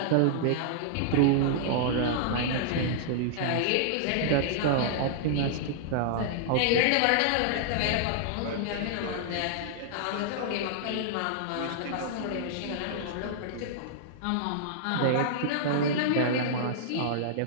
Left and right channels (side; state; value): both; different; correlation -0.01